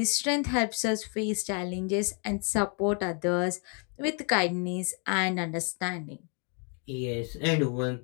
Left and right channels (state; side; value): quieter; right; 38.6 dB